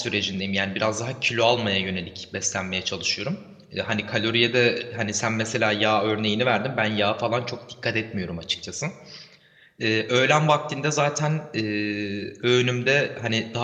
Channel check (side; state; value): both; identical; correlation 1.00